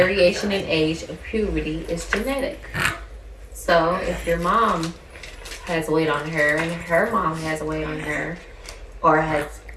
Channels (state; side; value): identical; both; correlation 1.00